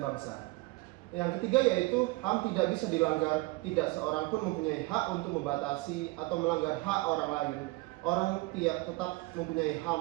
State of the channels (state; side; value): quieter; left; 22.6 dB